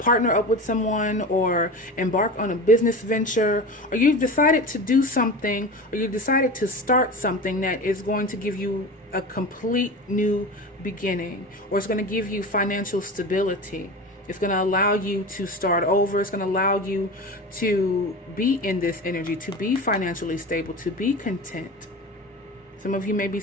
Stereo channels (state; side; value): normal; both; correlation 0.30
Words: up with someone, or embark on a business venture, or you've decided to do something, or you decided to start something that is going to give you a complete new beginning, or it's going to give you financial stability. It's going to allow you to start over. It's going to allow you to be in this energy, to be financially stable, to be content. Some of you may be